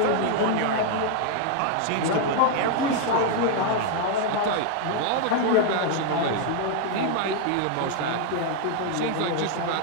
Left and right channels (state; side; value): different; both; correlation 0.00